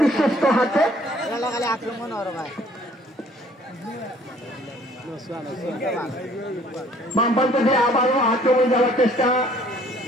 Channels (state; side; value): normal; both; correlation 0.58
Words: বিশ্বস্ত হাতে বামপান্ত দিয়ে আবারও আক্রমণ যাওয়ার চেষ্টা।